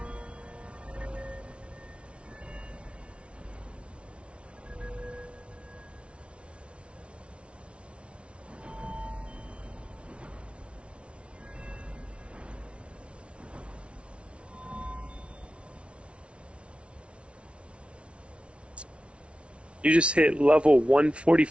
You just hit level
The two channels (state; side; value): late; left; 0.060 ms